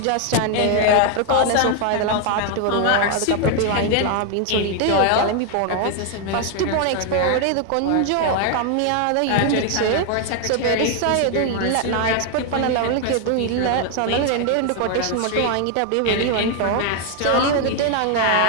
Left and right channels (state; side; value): different; both; correlation 0.01